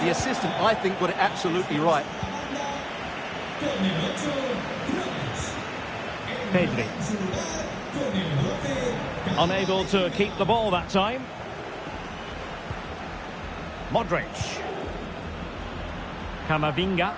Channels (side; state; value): both; identical; correlation 1.00